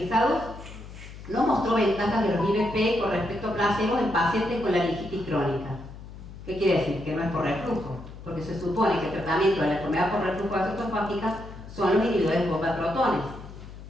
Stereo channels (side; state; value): left; noise; hum, 14 dB below the sound